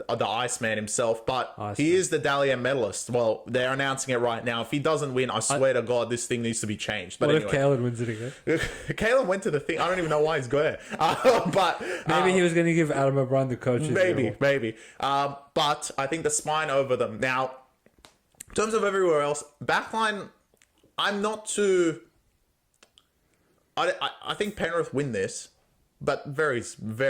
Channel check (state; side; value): identical; both; correlation 1.00